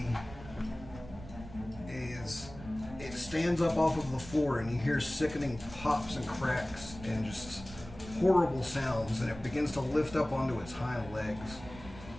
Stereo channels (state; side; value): noise; right; rumble, 15 dB below the sound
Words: is it stands up off of the floor and you hear sickening pops and cracks and just horrible sounds, and it begins to lift up onto its hind legs